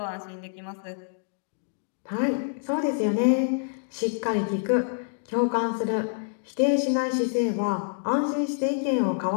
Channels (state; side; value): silent; right; digital silence